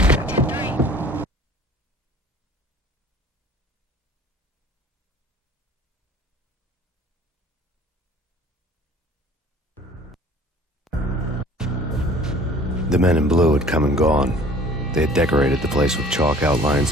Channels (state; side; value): normal; both; correlation 0.49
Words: The men in blue had come and gone. They had decorated the place with chalk